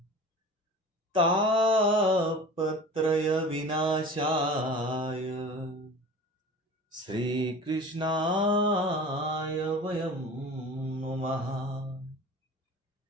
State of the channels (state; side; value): normal; both; correlation 0.38